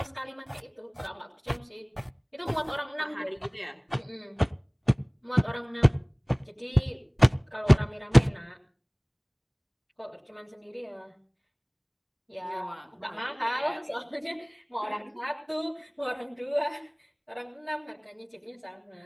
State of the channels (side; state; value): both; identical; correlation 1.00